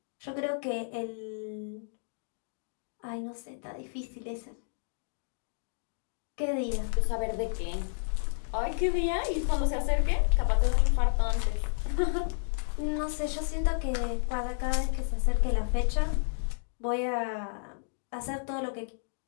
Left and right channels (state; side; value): silent; right; digital silence